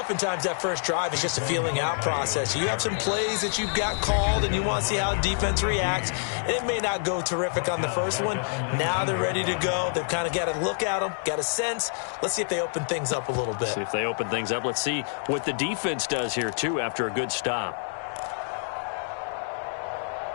that first drive is just a feeling out process. You have some plays that you've got called and you want to see how the defense reacts. And it may not go terrific on the first one. Now they're ready to go. They've kind of got to look at them, got a sense. Let's see if they open things up a little bit. See if they open things up. Let's see what the defense does here, too, after a good stop.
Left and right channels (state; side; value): silent; right; digital silence